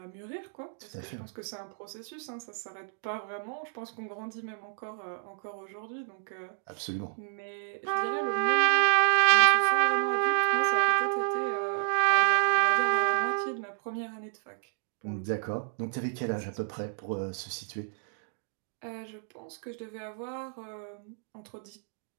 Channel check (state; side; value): silent; left; digital silence